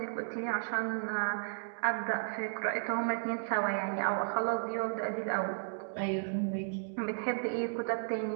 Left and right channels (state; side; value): silent; left; digital silence